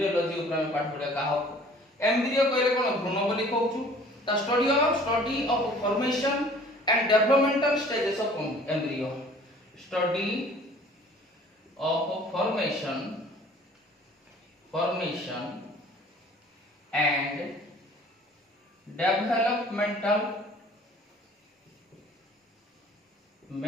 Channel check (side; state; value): both; normal; correlation 0.51